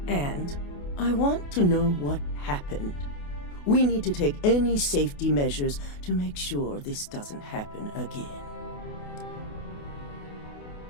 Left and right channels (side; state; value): right; late; 28 ms